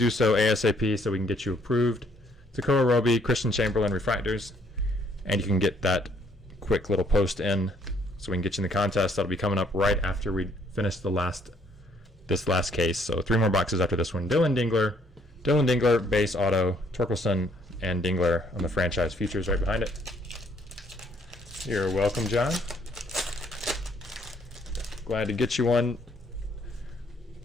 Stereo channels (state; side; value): normal; both; correlation 0.66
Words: so ASAP so we can get you approved. Takora Roby, Christian Chamberlain refractors, and you can get that quick little post in so we can get you in the contest. That'll be coming up right after we finish this last case. So 3 more boxes after this one. Dylan Dingler, base auto, Torkelson, and Dingler on the franchise features right behind it. You're welcome, John. Glad to get you one